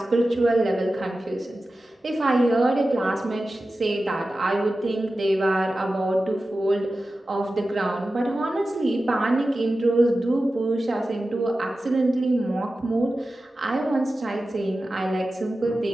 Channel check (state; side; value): normal; both; correlation 0.94